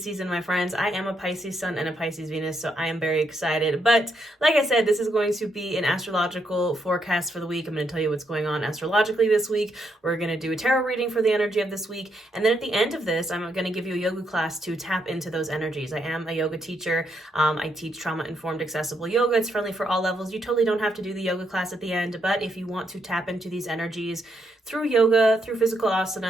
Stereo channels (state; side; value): normal; both; correlation 0.78